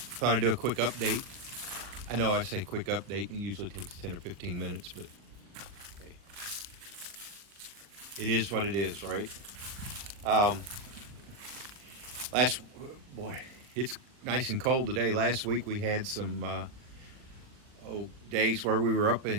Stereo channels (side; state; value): left; late; 40 ms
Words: I'd do a quick update. I know I say quick update, it usually takes 10 or 15 minutes, but hey, it is what it is, right? Boy, it's nice and cold today. Last week we had some days where we were up